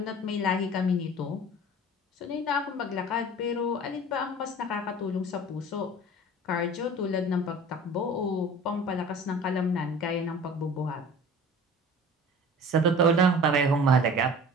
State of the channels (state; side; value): normal; both; correlation 0.42